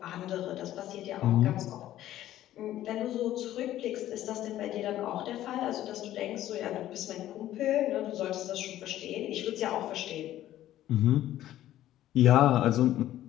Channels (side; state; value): right; quieter; 13.3 dB